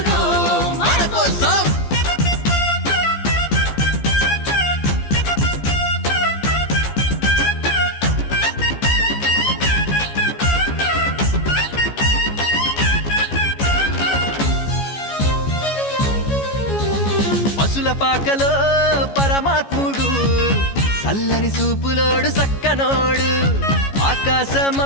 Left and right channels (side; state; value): right; late; 14 ms